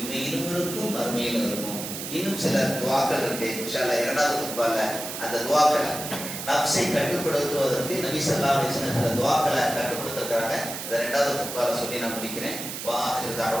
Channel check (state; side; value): noise; right; hiss, 7 dB below the sound